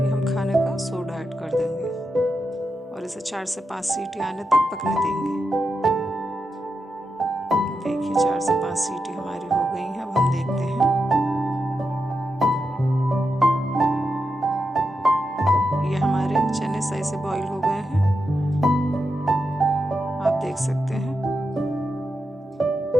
हम खाने का सोडा ऐड कर देंगे, और इसे 4 से 5 सीटी आने तक पकने देंगे। देखिए 4 से 5 सीटी हमारी हो गई हैं। अब हम देखते हैं। ये हमारे चने सही से बॉईल हो गए हैं, आप देख सकते हैं।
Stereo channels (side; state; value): both; normal; correlation 0.87